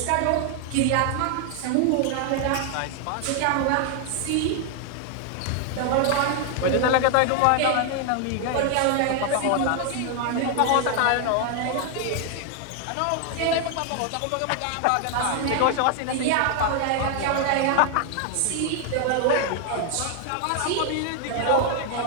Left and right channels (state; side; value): different; both; correlation 0.00